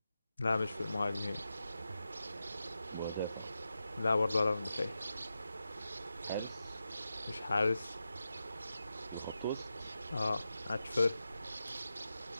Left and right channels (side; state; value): both; inverted; correlation -0.90